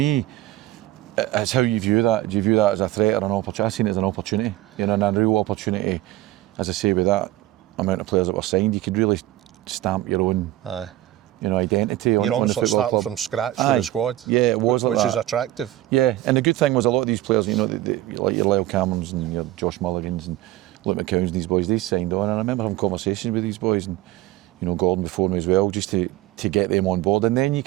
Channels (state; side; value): quieter; left; 15.6 dB